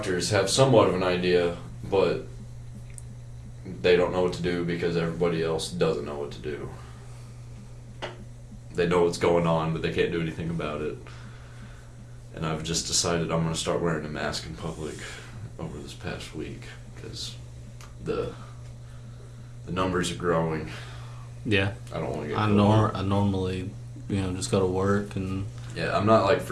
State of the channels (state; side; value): identical; both; correlation 1.00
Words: have somewhat of an idea, but they don't know what to do because everybody else doesn't know what to do. They know what's going on, but they can't do anything about it. And I've just decided I'm going to start wearing a mask in public over this past week, because the numbers are growing. Yeah. I don't want to get I normally, you know, just go to work and... Yeah, I'm not like